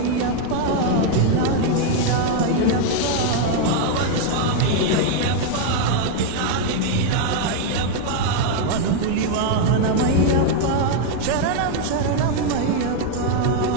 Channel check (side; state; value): both; different; correlation 0.00